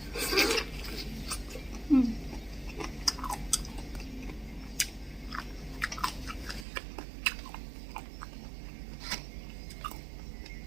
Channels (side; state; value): left; drops out; at 6.7 s